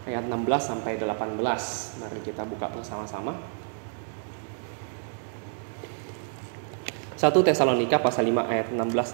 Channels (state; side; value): silent; left; 59 dB below the other